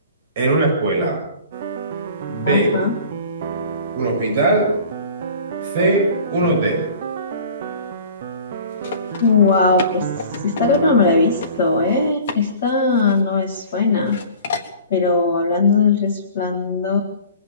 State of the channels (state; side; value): inverted; both; correlation -0.45